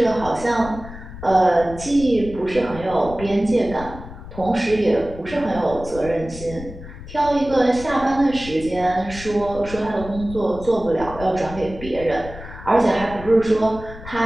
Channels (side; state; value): left; noise; rumble, 13 dB below the sound